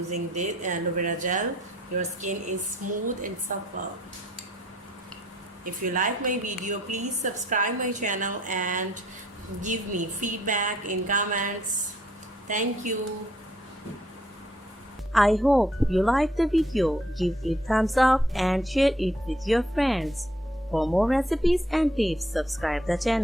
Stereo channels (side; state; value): both; normal; correlation 0.65